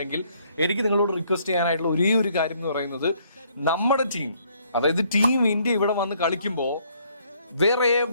എനിക്ക് നിങ്ങളോട് റിക്വസ്റ്റ് ചെയ്യാനായിട്ടുള്ള ഒരേ ഒരു കാര്യം എന്ന് പറയുന്നത്, നമ്മുടെ ടീം, അതായത് ടീം ഇന്ത്യ ഇവിടെ വന്ന് കളിക്കുമ്പോൾ വേറെ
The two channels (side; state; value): both; inverted; correlation -0.66